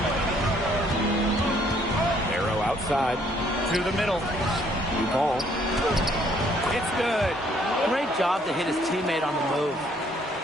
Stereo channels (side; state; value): both; normal; correlation 0.65